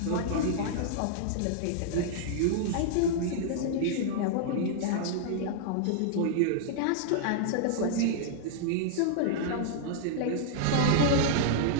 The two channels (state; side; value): different; both; correlation -0.01